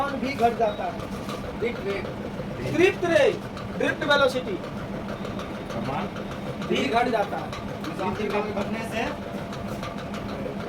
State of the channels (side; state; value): both; identical; correlation 1.00